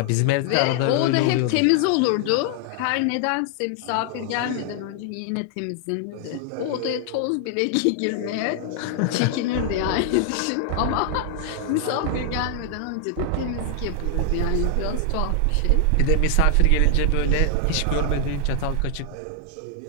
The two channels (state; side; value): different; both; correlation 0.00